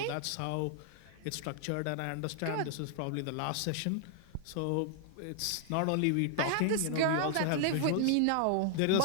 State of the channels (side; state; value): both; different; correlation 0.00